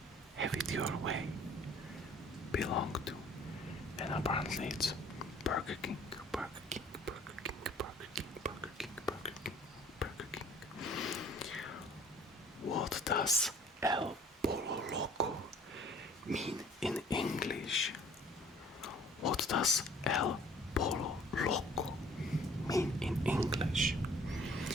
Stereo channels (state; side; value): normal; both; correlation 0.54